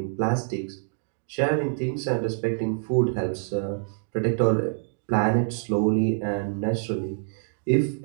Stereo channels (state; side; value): silent; left; digital silence